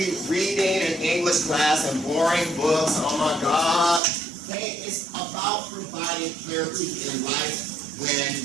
reading an English class and boring books. Oh my God. Okay, it's about providing clarity in life when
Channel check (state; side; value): drops out; left; at 4.0 s